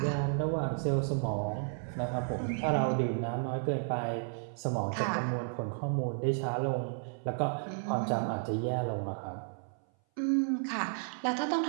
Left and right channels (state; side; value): silent; left; 56 dB below the other